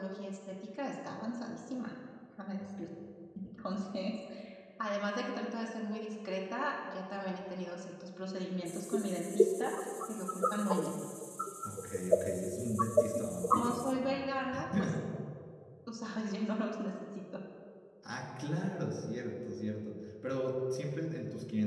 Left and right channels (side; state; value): both; identical; correlation 1.00